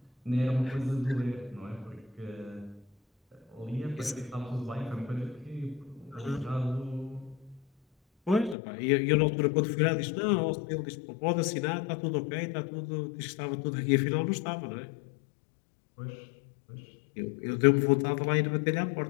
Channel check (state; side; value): drops out; right; at 8.6 s